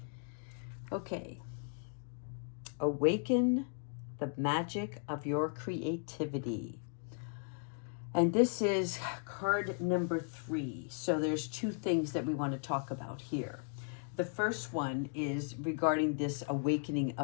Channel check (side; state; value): right; silent; 53 dB below the other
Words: Okay. Awaken the magic of your creativity. And this is card number 3. So there's two things that we want to talk about here. The first one is regarding this awakening